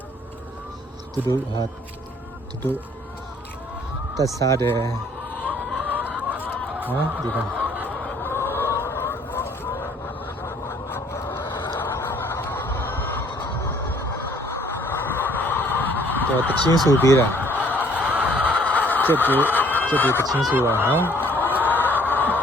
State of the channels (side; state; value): both; normal; correlation 0.60